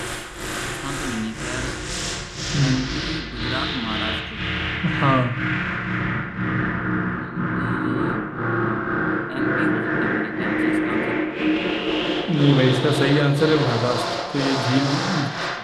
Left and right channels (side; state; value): both; identical; correlation 1.00